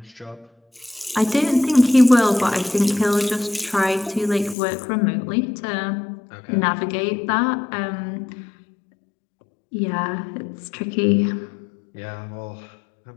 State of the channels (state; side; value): drops out; right; at 4.5 s